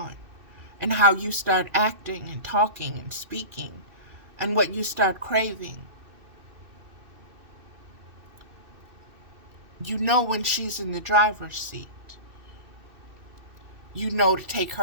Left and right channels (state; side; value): late; left; 2.6 ms